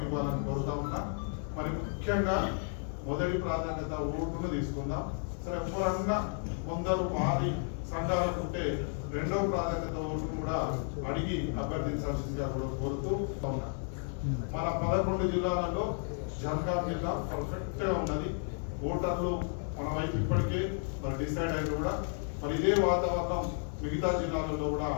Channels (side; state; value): right; silent; 56 dB below the other